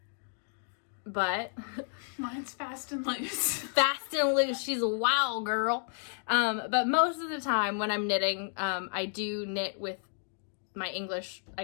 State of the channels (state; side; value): silent; right; 57 dB below the other